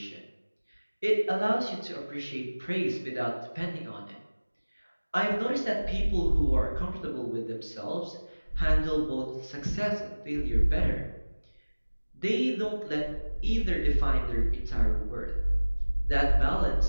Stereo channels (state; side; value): inverted; both; correlation -1.00